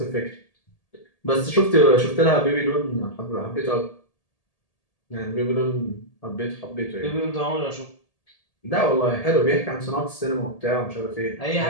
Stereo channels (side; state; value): right; late; 1.8 ms